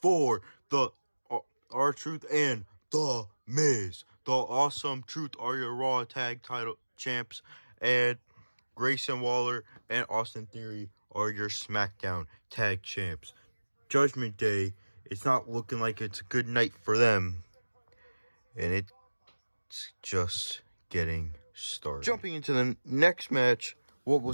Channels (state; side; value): inverted; both; correlation -1.00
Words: the R-Truth and The Miz. The Awesome Truth are your Raw Tag title champs, and Grayson Waller and Austin Theory are your SmackDown Tag champs. Judgment Day, it's not looking like it's a good night for them, and it's just getting started. Jumping into the next match, what